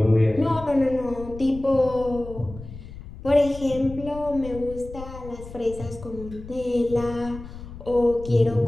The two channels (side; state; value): left; noise; rumble, 14 dB below the sound